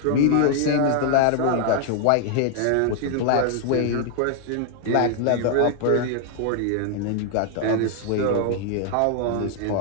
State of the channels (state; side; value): different; both; correlation 0.00